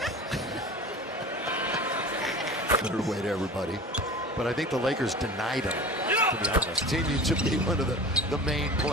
Better way to everybody. But I think the Lakers denied him, to be honest. Continued to be one of the main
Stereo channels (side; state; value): both; normal; correlation 0.37